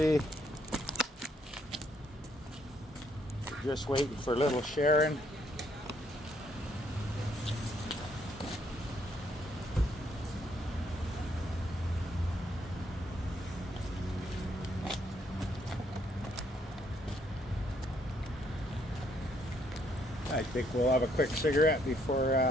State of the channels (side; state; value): both; normal; correlation 0.70